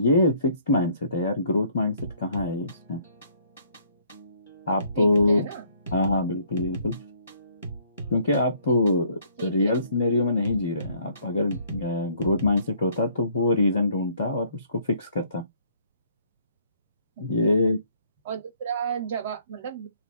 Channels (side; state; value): both; inverted; correlation -0.63